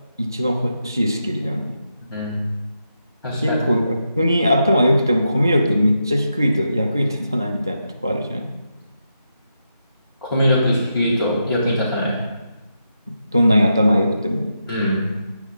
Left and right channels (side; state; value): both; inverted; correlation -0.84